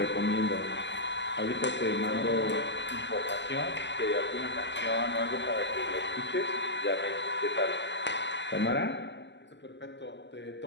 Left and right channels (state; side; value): late; right; 0.51 ms